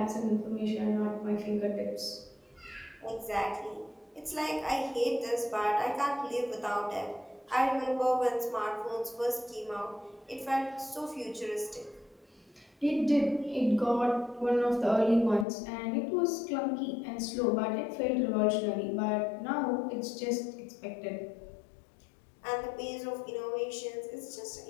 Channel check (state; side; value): drops out; right; at 15.5 s